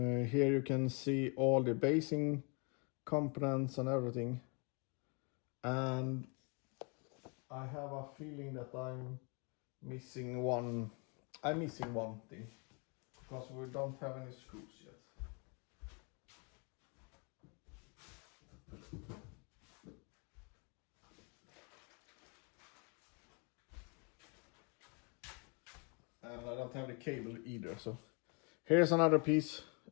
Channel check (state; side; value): quieter; right; 34.0 dB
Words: you can see all the basing components and everything, and I have a feeling that I'm missing one thing, because we don't have any screws yet. And I don't have the cable either, so here's another piece.